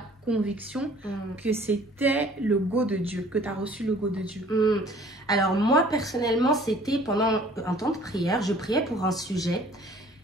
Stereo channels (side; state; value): both; normal; correlation 0.53